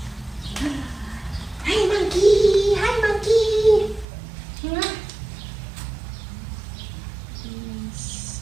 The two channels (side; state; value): left; drops out; at 4.0 s